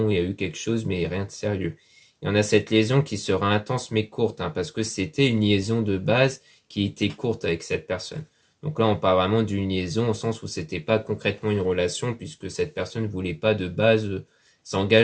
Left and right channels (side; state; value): both; identical; correlation 1.00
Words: il y a eu quelque chose mais rien de sérieux. Et on a cette liaison qui sera intense mais courte, parce que c'était une liaison de base qui était courte avec cette personne. Donc là, on parle vraiment d'une liaison au sens où c'était pas concrètement une relation puisque cette personne ne voulait pas de base